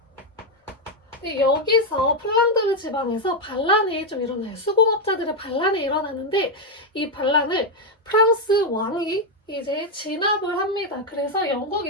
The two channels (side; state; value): both; normal; correlation 0.03